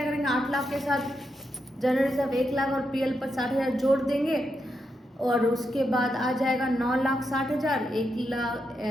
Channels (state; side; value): normal; both; correlation 0.84